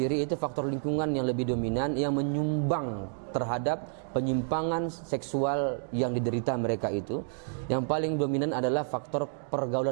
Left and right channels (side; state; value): left; silent; 58 dB below the other